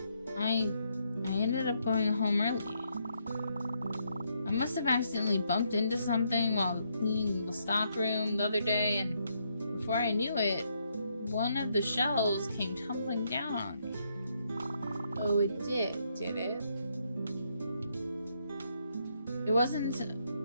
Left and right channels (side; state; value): both; inverted; correlation -0.75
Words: I ended up going home early. I must have accidentally bumped into something while cleaning the stockroom the other day, and before I knew it, one of the shelves came tumbling down on me. Oh, it did it? It wasn't